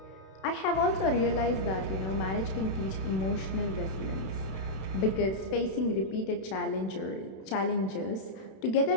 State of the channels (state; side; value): late; right; 32 ms